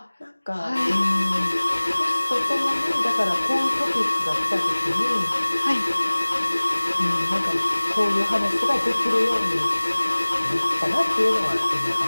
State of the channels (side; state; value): both; inverted; correlation -1.00